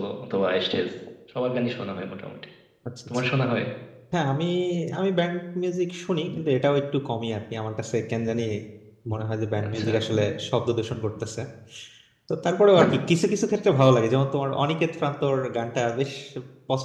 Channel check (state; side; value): identical; both; correlation 1.00